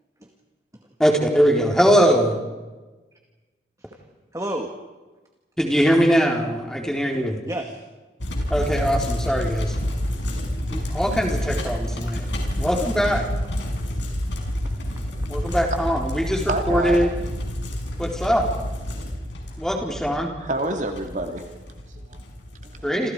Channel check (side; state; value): both; normal; correlation 0.80